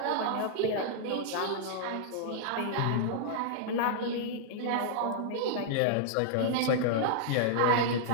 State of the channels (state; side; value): different; both; correlation -0.01